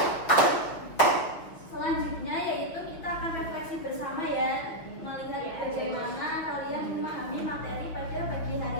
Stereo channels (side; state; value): right; late; 6.5 ms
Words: Selanjutnya yaitu kita akan refleksi bersama ya, melihat bagaimana kalian memahami materi pada pagi hari